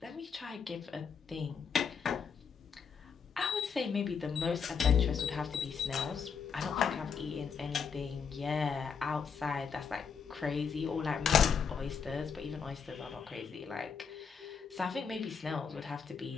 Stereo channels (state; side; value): quieter; right; 6.4 dB